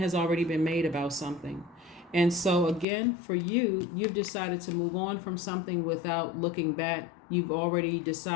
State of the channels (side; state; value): right; drops out; at 2.9 s